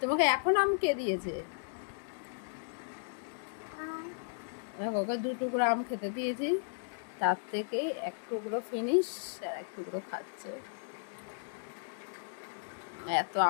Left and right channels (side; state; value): right; silent; digital silence